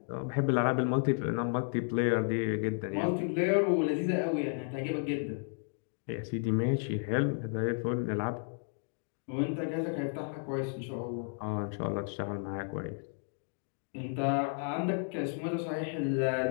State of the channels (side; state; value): right; silent; 56 dB below the other